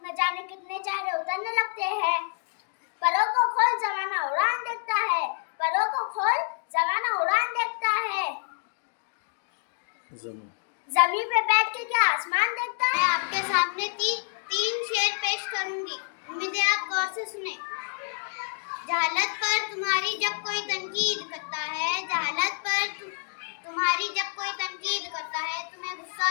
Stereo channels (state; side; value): silent; right; 57 dB below the other